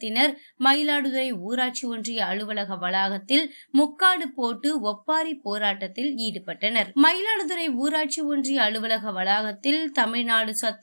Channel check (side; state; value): both; inverted; correlation -1.00